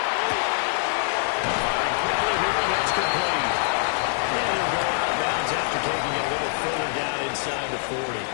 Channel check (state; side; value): silent; right; 59 dB below the other